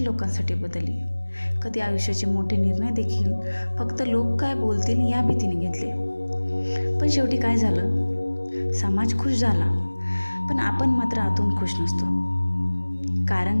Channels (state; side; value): inverted; both; correlation -1.00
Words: लोकांसाठी बदलली, कधी आयुष्याचे मोठे निर्णय देखील फक्त लोक काय बोलतील या भीतीने घेतले. पण शेवटी काय झालं? समाज खुश झाला, पण आपण मात्र आतून खुश नसतो.